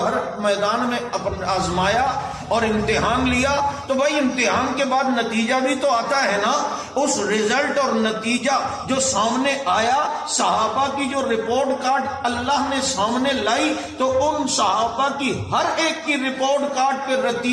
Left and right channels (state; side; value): identical; both; correlation 1.00